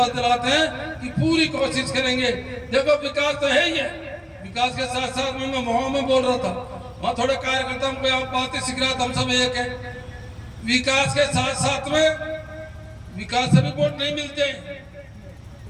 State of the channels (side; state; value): both; identical; correlation 1.00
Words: दिलाते हैं कि पूरी कोशिश करेंगे। देखो विकास तो है ही है, विकास के साथ साथ मैं वहां में बोल रहा था, वहाँ थोड़े कार्यकर्ता हमको यहाँ बातें सीख रहा था, हम सब एक है। विकास के साथ साथ में विकास से भी वोट नहीं मिलते।